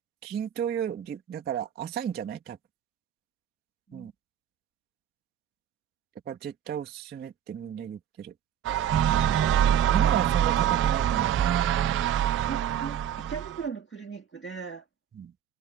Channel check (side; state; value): left; quieter; 9.9 dB